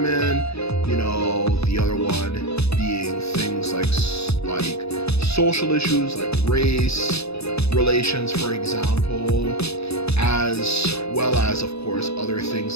the other one being things like social issues like race relations, for example, as well as, of course, other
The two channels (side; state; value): right; late; 0.79 ms